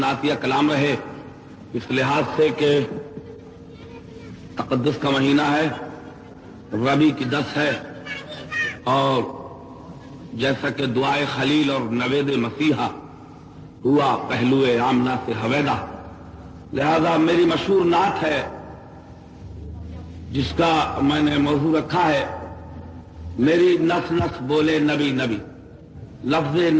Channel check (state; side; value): identical; both; correlation 1.00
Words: کلام رہے، اس لحاظ سے کہ تقدس کا مہینہ ہے، ربیع کی 10 ہے، اور جیسا کہ دعائے خلیل اور نوید مسیحا ہوا پہلو آمنہ سے حویدہ، لہذا میری مشہور نعت ہے جس کا میں نے موضوع رکھا ہے میری نس نس بولے نبی نبی۔ لفظ